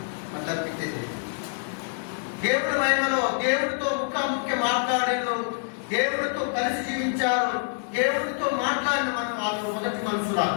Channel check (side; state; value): right; silent; digital silence